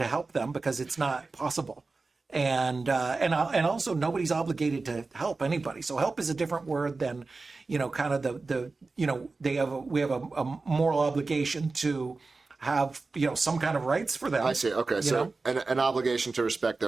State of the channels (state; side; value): quieter; left; 3.8 dB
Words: help them because it's not possible. And also nobody's obligated to help anybody. So help is a different word than, kind of we have a moral obligation to have, some kind of rights for them. I see. Okay, you so know? an obligation to respect